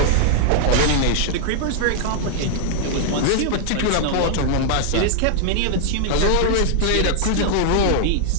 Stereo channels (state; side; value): different; both; correlation 0.00